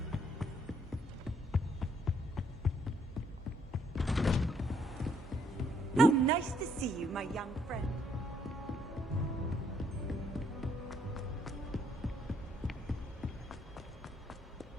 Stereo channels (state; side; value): normal; both; correlation 0.69